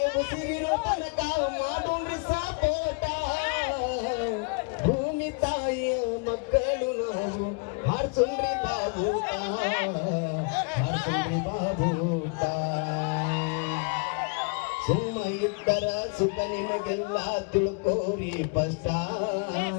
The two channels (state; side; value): quieter; right; 33.6 dB